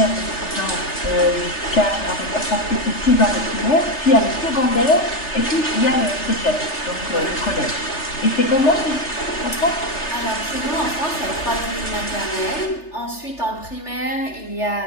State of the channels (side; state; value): right; late; 3.3 ms